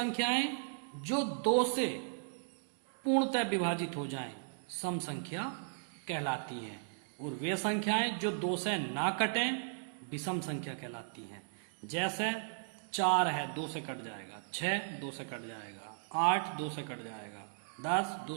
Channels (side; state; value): left; silent; digital silence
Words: जो दो से पूर्णतः विभाजित हो जाएं सम संख्या कहलाती हैं, और वे संख्याएं जो दो से ना कटें विषम संख्या कहलाती हैं। जैसे 4 है, 2 से कट जाएगा, 6 2 से कट जाएगा, 8 2 से कट जाएगा, 10 2